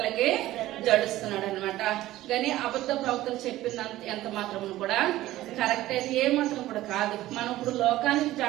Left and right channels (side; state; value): left; quieter; 15.6 dB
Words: జడుస్తున్నాడు అనమాట. కానీ అబద్ధ ప్రవక్తలు చెప్పినంత ఎంత మాత్రం కూడా కరెక్ట్ అయితే ఏ మాత్రం కూడా కాదు. మనం ఇప్పుడు లోకానికి